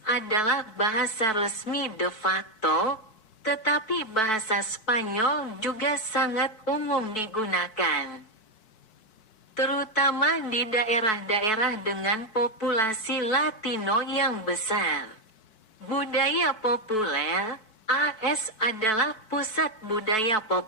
adalah bahasa resmi de facto, tetapi bahasa Spanyol juga sangat umum digunakan, terutama di daerah-daerah dengan populasi Latino yang besar. Budaya populer, AS adalah pusat budaya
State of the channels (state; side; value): late; right; 4.6 ms